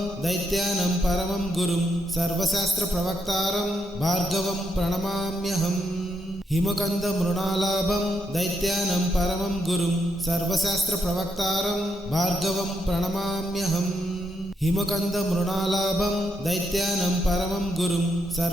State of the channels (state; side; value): normal; both; correlation 0.80